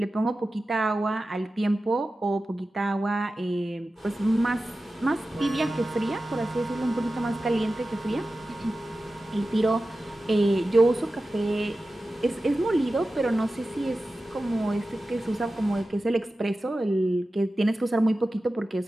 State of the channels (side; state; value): both; normal; correlation 0.94